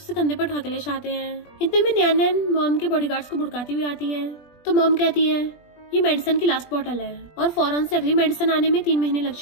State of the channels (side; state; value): right; late; 20 ms